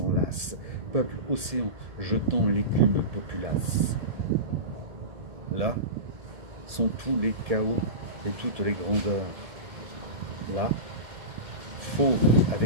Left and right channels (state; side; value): late; left; 1.7 ms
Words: peuple océan jetant l'écume populace. Là sont tous les chaos et toutes les grandeurs. Là, fauve